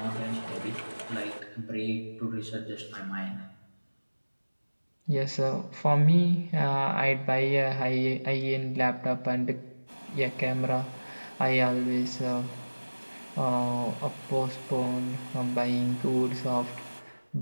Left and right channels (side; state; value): both; inverted; correlation -1.00